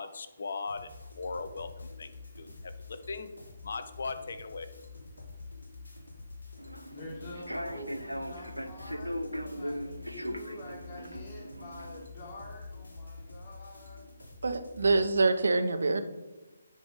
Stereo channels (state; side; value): inverted; both; correlation -0.89